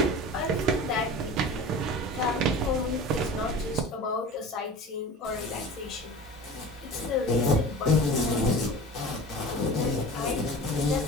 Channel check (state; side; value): normal; both; correlation 0.36